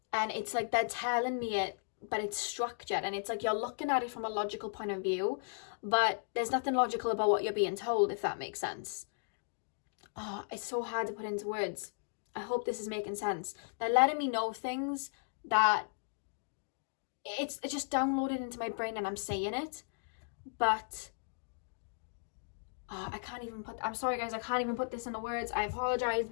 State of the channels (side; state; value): right; silent; digital silence